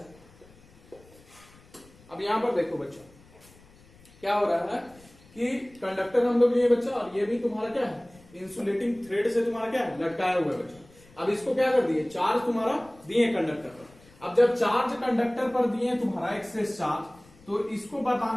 अब यहां पर देखो बच्चा क्या हो रहा है कि कंडक्टर हम लोग लिए बच्चा, और ये भी तुम्हारा क्या है, इंसुलेटिंग थ्रेड से तुम्हारा क्या है, लटकाया हुआ है बच्चा। अब इसको क्या कर दिए, चार्ज तुम्हारा दिए कंडक्टर पर। अब जब चार्ज कंडक्टर पर दिए तुम्हारा एक्सेस चार्ज, तो इसको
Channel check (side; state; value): left; noise; rumble, 26 dB below the sound